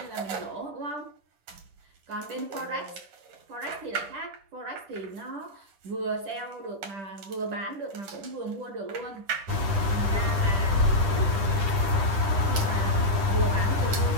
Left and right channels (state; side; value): late; left; 9.9 ms